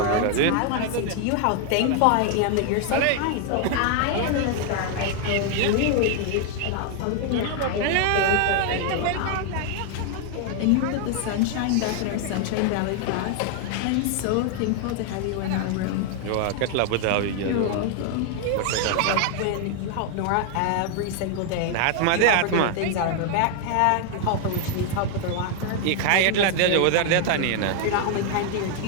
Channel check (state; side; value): different; both; correlation 0.00